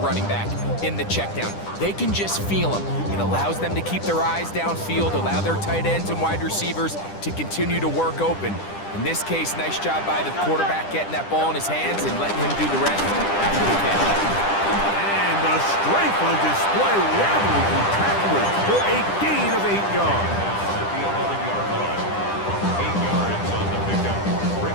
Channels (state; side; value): late; right; 10 ms